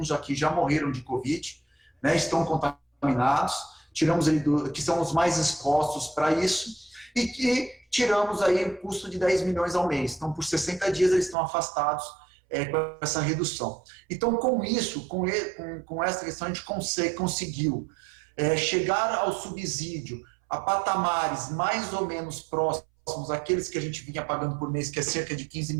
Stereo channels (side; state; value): left; drops out; at 11.4 s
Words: aqui já morreram de Covid, né, estão contaminados, tiramos ele que são os mais expostos para isso, e tiramos aí o custo de 10 milhões ao mês. Então, por 60 dias, eles estão afastados com essa redução. Então, com isso, com essa questão, a gente conseguiu chegar ao subsídio a patamares mais ou menos próximos àqueles que a gente vinha pagando por mês, que é cerca de 15